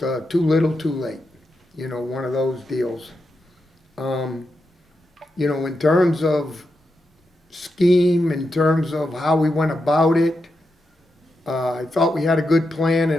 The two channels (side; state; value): both; normal; correlation 0.86